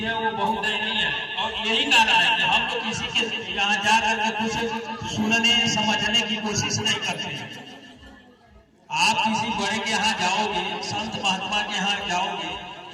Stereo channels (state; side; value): identical; both; correlation 1.00